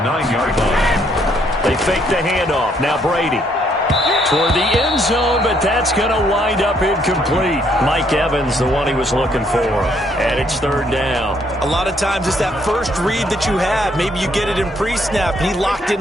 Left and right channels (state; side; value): normal; both; correlation 0.69